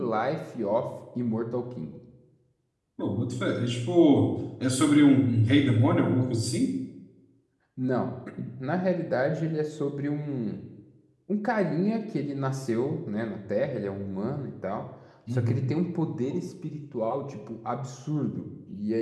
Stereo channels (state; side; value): identical; both; correlation 1.00